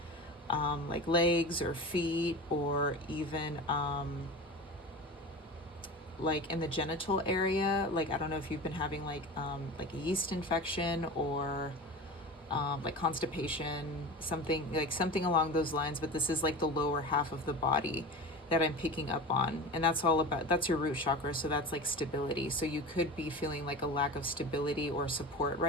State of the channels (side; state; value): both; normal; correlation 0.31